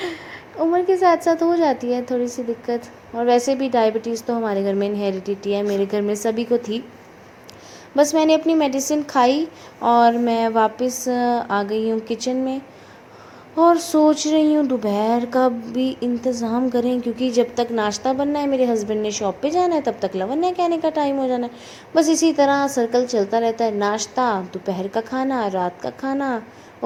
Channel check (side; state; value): both; identical; correlation 1.00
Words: उम्र के साथ साथ हो जाती है थोड़ी सी दिक्कत। और वैसे भी डायबिटीज़ तो हमारे घर में इनहेरिडिटी है, मेरे घर में सभी को थी। बस मैंने अपनी मेडिसिन खाई और मैं वापस आ गई हूँ किचन में। और सोच रही हूँ दोपहर का भी इंतज़ाम करें, क्योंकि जब तक नाश्ता बनना है, मेरे हस्बैंड ने शॉप पे जाना है, तब तक लवन्या के आने का टाइम हो जाना है। बस इसी तरह सर्कल चलता रहता है, नाश्ता, दोपहर का खाना, रात का खाना।